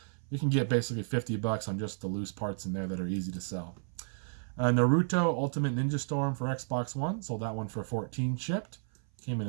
You can get basically $50 on just the loose parts in there that are easy to sell. Naruto Ultimate Ninja Storm for Xbox One. Sold that one for $14 shipped. Came in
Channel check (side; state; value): left; silent; 56 dB below the other